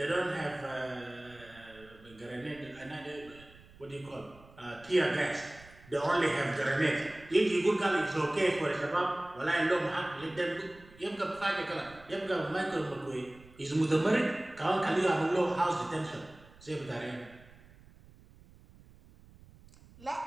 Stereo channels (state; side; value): noise; right; rumble, 23 dB below the sound